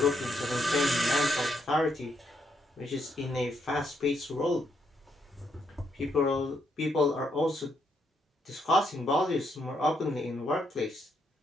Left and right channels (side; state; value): both; normal; correlation 0.76